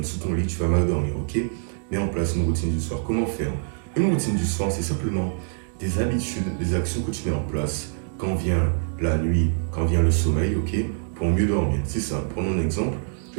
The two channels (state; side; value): silent; left; digital silence